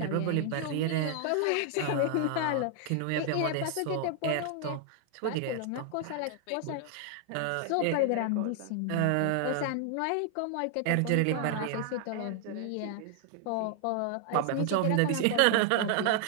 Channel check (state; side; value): different; both; correlation 0.00